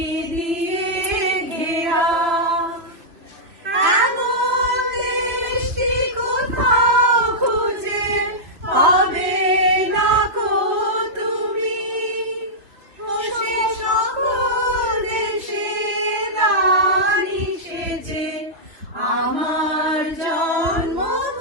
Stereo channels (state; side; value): late; left; 3.2 ms